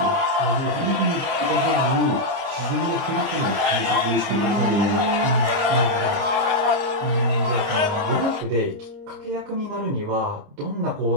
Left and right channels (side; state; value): left; late; 29 ms